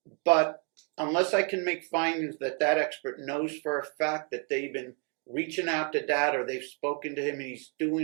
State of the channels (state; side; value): quieter; left; 38.6 dB